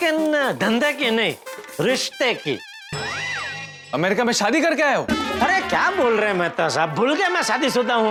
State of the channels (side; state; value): both; identical; correlation 1.00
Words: धंधे की नहीं, रिश्ते की। अमेरिका में शादी करके आए हो? अरे क्या बोल रहे हैं मेहता साहब, भूल गए मैं शादीशुदा